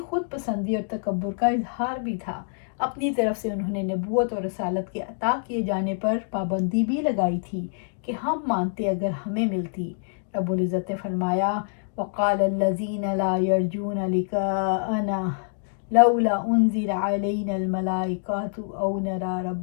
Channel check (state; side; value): silent; right; digital silence